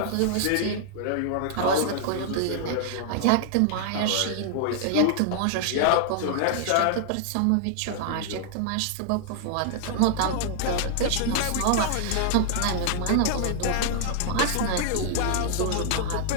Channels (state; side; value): different; both; correlation -0.01